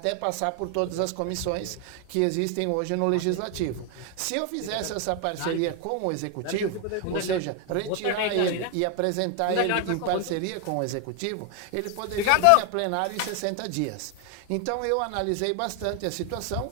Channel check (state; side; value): different; both; correlation 0.01